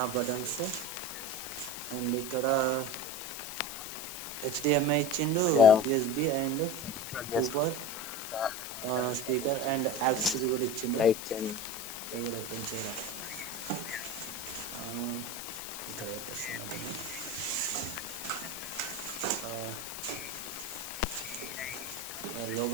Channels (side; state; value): left; noise; hiss, 9 dB below the sound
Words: ఆఫ్ బటన్స్, అండ్ ఇక్కడ HDMI ఇచ్చిండు, USB and super speaker and aux కూడా ఇచ్చిండు. ఇది కూడా ఓపెన్ చేయాలి. ఇక్కడ పెట్టేస్తున్నా.